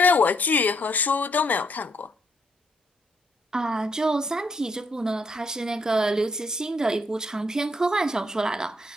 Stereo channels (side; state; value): both; normal; correlation 0.72